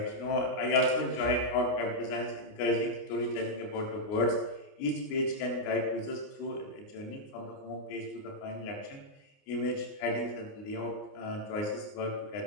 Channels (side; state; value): right; late; 29 ms